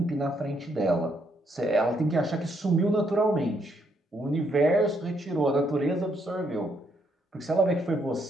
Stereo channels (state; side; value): normal; both; correlation 0.73